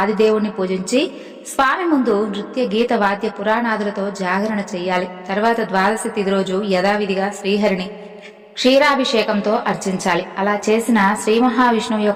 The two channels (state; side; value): identical; both; correlation 1.00